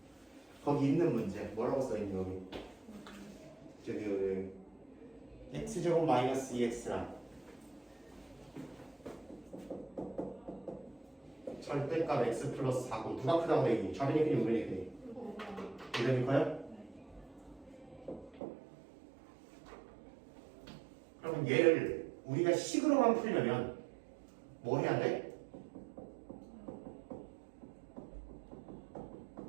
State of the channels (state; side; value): drops out; left; at 18.4 s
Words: 거기 있는 문제 뭐라고 써있니 여기? 저기 x제곱 마이너스 2x랑 절대값 x 플러스 4고 누가 크다고 얘기해? 좌변이 크니 우변이 크니? 우변이 커요? 그러면 얘를 우리가 식으로만 풀려면 뭐 해야 돼?